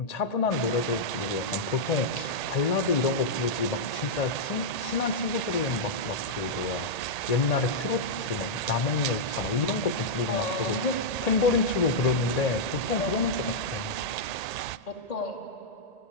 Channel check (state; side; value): late; right; 1.8 ms